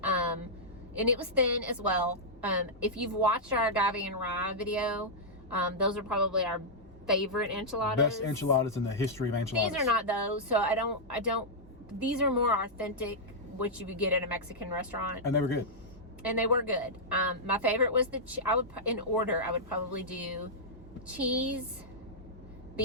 it was thin as well. If you've watched our agave and rye video, those are probably our favorite enchiladas. Best enchiladas in the history of enchiladas. These are not those, so I don't. These are more authentic, which you would get at a Mexican restaurant. And they were good. And they were good. My favorite was in order, I would probably do cheese,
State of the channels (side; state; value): both; normal; correlation -0.08